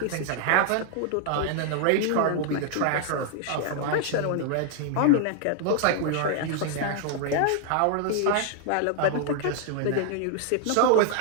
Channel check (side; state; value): both; different; correlation 0.00